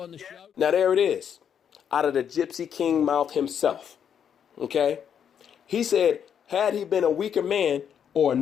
on the show. Now there it is, out of the Gypsy King mouth himself. Okay? He said, had he been a weaker man or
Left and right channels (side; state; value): right; quieter; 8.3 dB